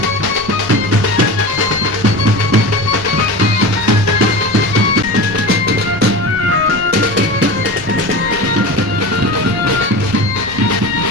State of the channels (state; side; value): noise; left; rumble, 18 dB below the sound